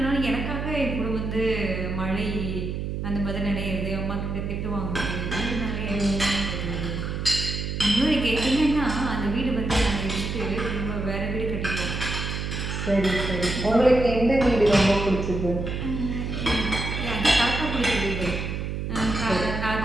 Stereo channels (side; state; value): right; noise; hum, 3 dB below the sound